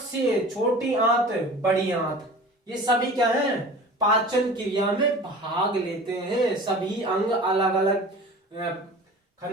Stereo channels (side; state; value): both; normal; correlation 0.40